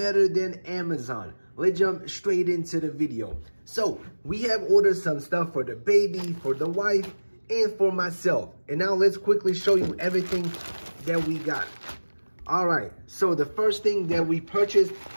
than Amazon. Let's jump straight into the video. So, we have ordered some stuff for the baby, for the wife, and for myself. And now let's quickly show you everything that we got. Alright, so the first thing that we purchased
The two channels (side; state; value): both; inverted; correlation -1.00